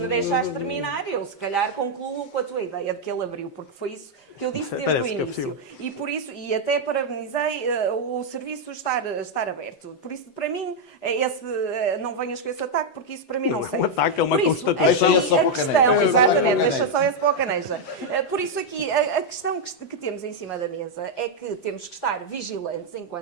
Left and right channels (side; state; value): right; late; 6.5 ms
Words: deixares terminar, eu se calhar concluo com a tua ideia de que ele abriu, porque foi isso que eu disse desde o início. E por isso, e até parabenizei o serviço estar aberto. Por isso, para mim, não venhas com esse ataque, porque isso para mim não serve. É um ataque, é uma Por isso, constatação. Deixa só para o Caneja. Exatamente, deixa só esse para o Caneja. Por isso aqui, a questão que temos em cima da mesa é que temos que estar vigilantes